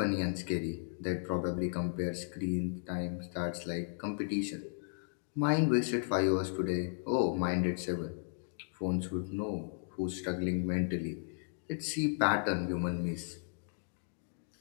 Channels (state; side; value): silent; right; digital silence